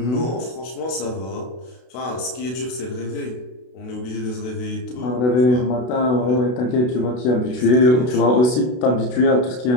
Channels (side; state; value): right; late; 32 ms